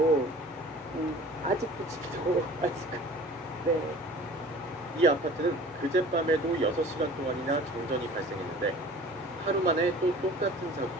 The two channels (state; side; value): normal; both; correlation 0.45